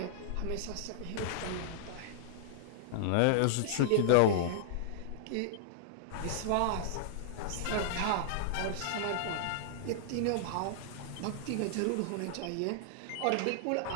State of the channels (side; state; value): both; different; correlation -0.01